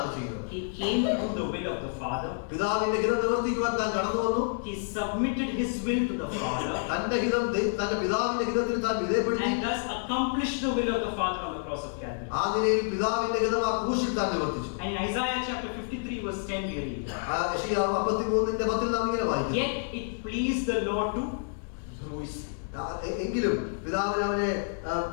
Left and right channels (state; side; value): silent; right; 59 dB below the other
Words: ചെയ്യുന്നത്. He came to do the will of the Father. പിതാവിന്റെ ഹിതം നിവർത്തിക്കുവാൻ താൻ കടന്നു വന്നു. He submitted his will to the Father. തന്റെ പിതാവിന്റെ ഹിതത്തിൽ താൻ വിധേയപ്പെടുത്തി. And thus accomplished the will of the Father on the cross of Calvary. ആ നിലയിൽ പിതാവിന്റെ ഹിതം ആ ക്രൂശിൽ താൻ നിവർത്തിച്ചു. And in Isaiah chapter 53 verse 10 we read, യെശയ്യാവ് 53:10 നാം ഇങ്ങനെ വായിക്കുന്നു, yet it pleased the Lord to bruise. എങ്കിലും പിതാവിന് അവനെ